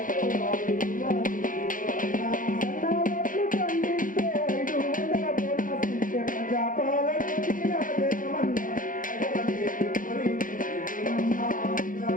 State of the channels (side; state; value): right; late; 0.39 ms